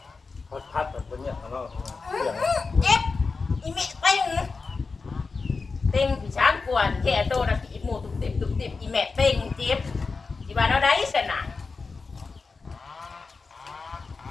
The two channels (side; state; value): right; quieter; 4.4 dB